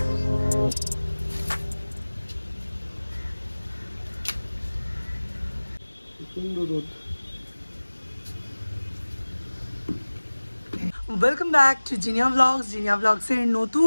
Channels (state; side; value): inverted; both; correlation -1.00